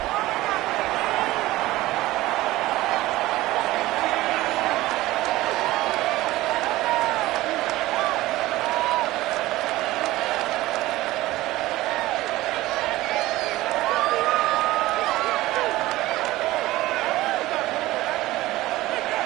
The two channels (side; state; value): left; quieter; 17.6 dB